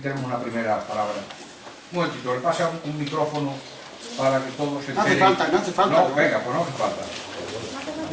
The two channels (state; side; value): identical; both; correlation 1.00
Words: una primera palabra. Un momentito, le pasa un micrófono para que todos se enteren. No hace falta. No, venga, pues no hace falta.